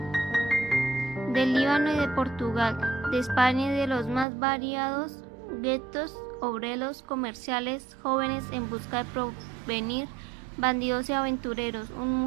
del Líbano y de Portugal, de España y de los más variados guetos, obreros, comerciales, jóvenes en busca de porvenir, bandidos y aventureros, un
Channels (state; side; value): drops out; left; at 4.2 s